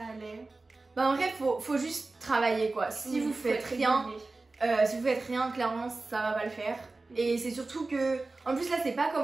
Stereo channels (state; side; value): quieter; left; 3.4 dB